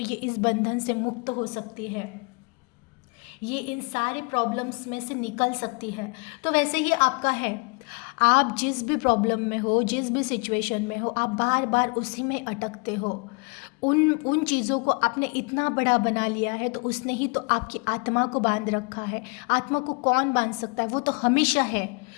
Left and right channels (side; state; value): right; quieter; 32.3 dB